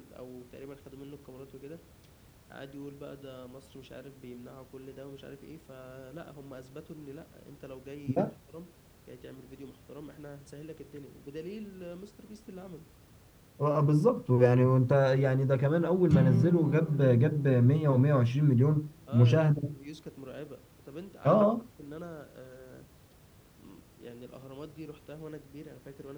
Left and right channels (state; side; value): identical; both; correlation 1.00